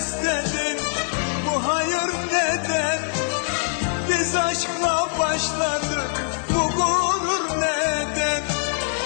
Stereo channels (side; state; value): right; silent; 56 dB below the other